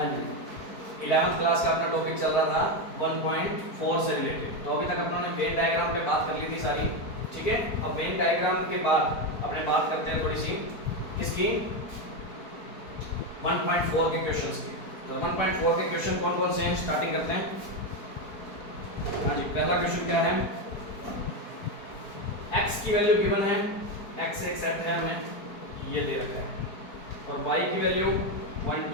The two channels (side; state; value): right; late; 4.5 ms